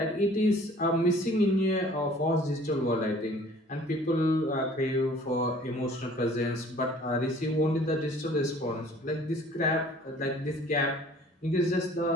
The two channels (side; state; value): both; normal; correlation 0.52